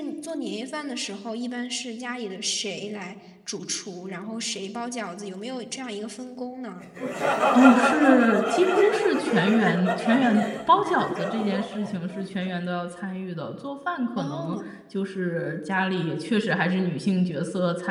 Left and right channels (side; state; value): both; identical; correlation 1.00